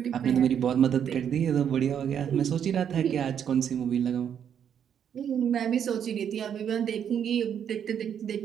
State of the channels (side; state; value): left; quieter; 8.6 dB